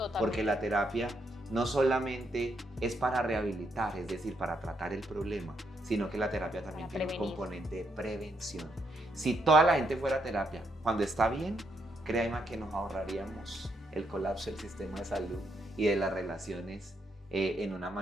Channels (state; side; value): normal; both; correlation 0.77